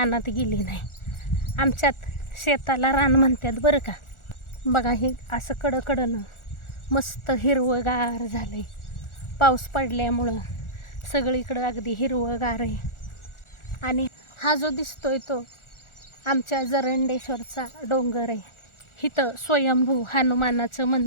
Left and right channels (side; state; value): right; late; 1.4 ms